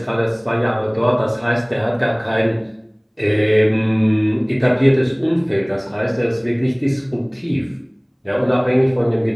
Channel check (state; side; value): identical; both; correlation 1.00